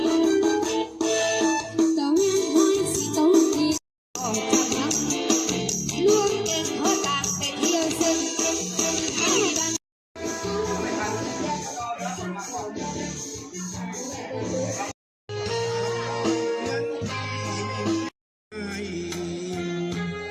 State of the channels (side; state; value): both; identical; correlation 1.00